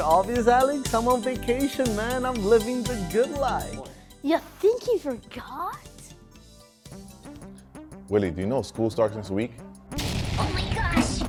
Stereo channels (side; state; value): both; identical; correlation 1.00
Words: obvious, Alex? I'm on vacation, man. I'm living the good life. You think he forgot? Willie, do you know school starts next week? Oh my gosh!